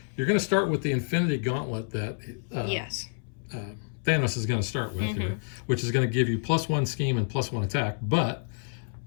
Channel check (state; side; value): silent; right; 59 dB below the other